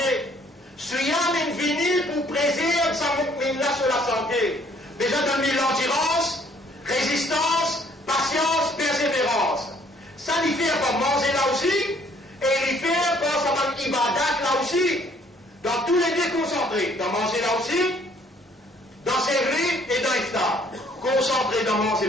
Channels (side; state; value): both; normal; correlation 0.61